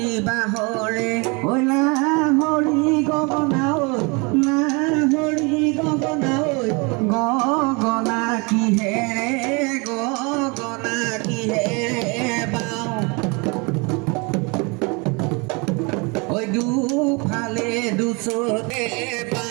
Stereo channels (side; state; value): left; quieter; 29.8 dB